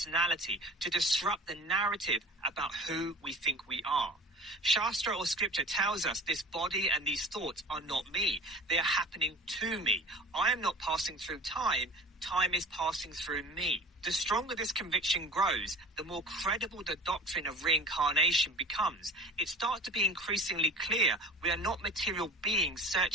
to disrupt the narrative about who we think we are. Shastra or scripture tells us this body and these thoughts are not me. They are happening to me. I am not passing through time. Time is passing through me. The stronger this conviction grows, the more credible the doctrine of reincarnation becomes. It starts to be increasingly clear we are not material beings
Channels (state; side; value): normal; both; correlation 0.40